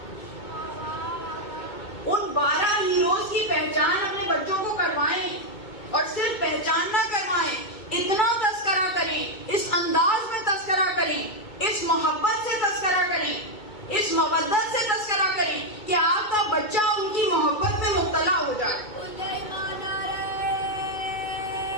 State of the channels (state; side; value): late; right; 2.2 ms